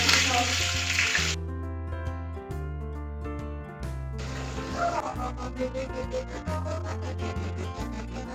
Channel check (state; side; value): identical; both; correlation 1.00